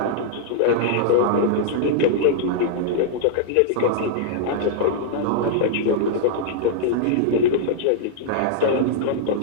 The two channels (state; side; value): different; both; correlation -0.02